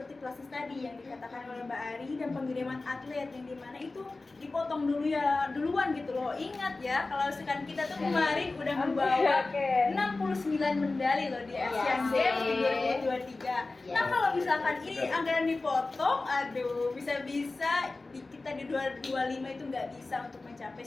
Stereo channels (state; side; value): quieter; right; 3.4 dB